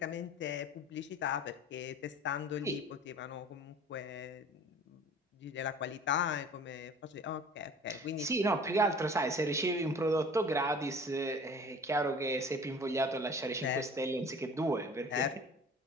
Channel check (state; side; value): normal; both; correlation 0.45